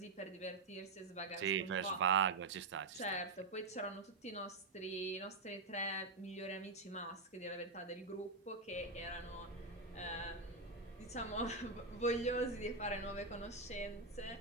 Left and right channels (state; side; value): quieter; left; 3.6 dB